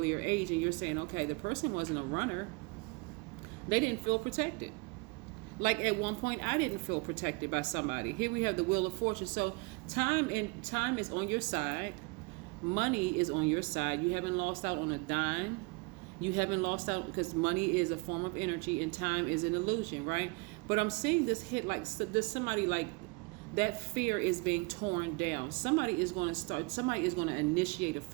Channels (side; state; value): left; quieter; 28.8 dB